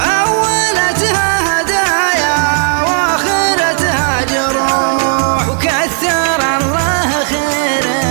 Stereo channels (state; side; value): silent; left; 57 dB below the other